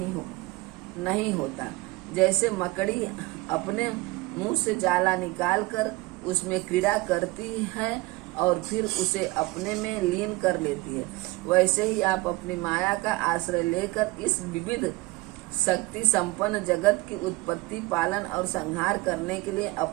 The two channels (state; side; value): quieter; left; 21.2 dB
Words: नहीं होता। जैसे मकड़ी अपने मुंह से जाला निकालकर उसमें क्रीड़ा करती है और फिर उसे अपने में लीन कर लेती है, वैसे ही आप अपनी माया का आश्रय लेकर इस विविध शक्ति संपन्न जगत की उत्पत्ति, पालन और संहार करने के लिए